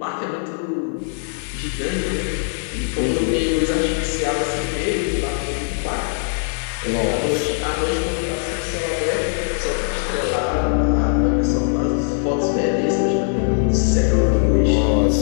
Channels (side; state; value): right; silent; digital silence